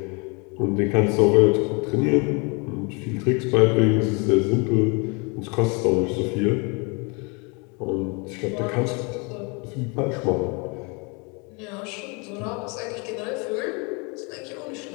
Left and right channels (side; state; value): right; quieter; 31.1 dB